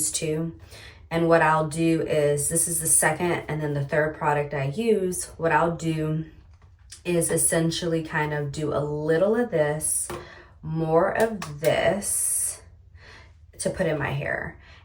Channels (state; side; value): identical; both; correlation 1.00